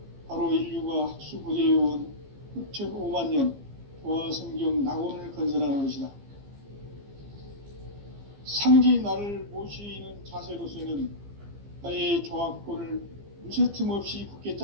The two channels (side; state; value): left; late; 15 ms